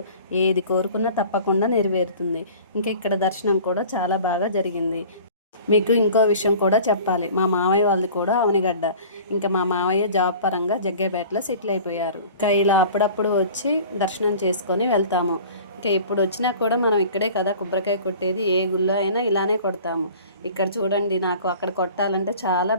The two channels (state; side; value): inverted; both; correlation -0.44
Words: ఏది కోరుకున్నా తప్పకుండా నెరవేరుతుంది. ఇంకా ఇక్కడ దర్శనం కూడా చాలా బాగా జరిగింది. మీకు ఇంకో విషయం కూడా చెప్పాలి, మా మామయ్య వాళ్ళది కూడా అవనిగడ్డ. ఇంకా మా మామయ్య జాబ్ పరంగా జగ్గేపేటలో సెటిల్ అయిపోయారు. ఇంకా ఇలా అప్పుడప్పుడు వచ్చి దర్శనం చేసుకొని వెళ్తాము. ఇంకా ఎప్పుడు వచ్చినా కూడా మనం ఇక్కడే కదా కొబ్బరికాయ కొట్టేది, ఏ గుళ్ళో అయినా ఇలానే కొడతాము. ఇక్కడ చూడండి, నాకు అక్కడ కొట్టాలంటే చాలా